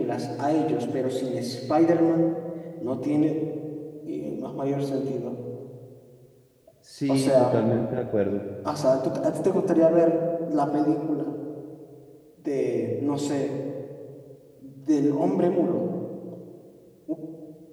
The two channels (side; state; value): both; identical; correlation 1.00